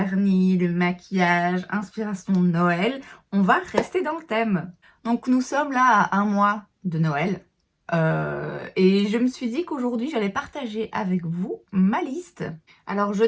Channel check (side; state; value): both; identical; correlation 1.00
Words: le maquillage, inspiration de Noël. On va rester dans le thème. Donc nous sommes là à un mois de Noël. Et je me suis dit qu'aujourd'hui j'allais partager avec vous ma liste. Alors je